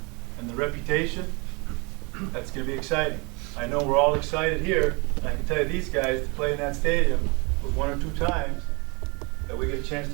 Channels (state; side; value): quieter; left; 29.9 dB